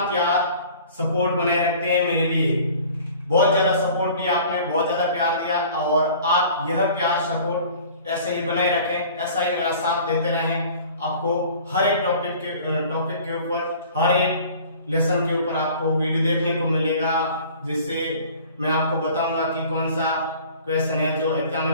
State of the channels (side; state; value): both; inverted; correlation -0.47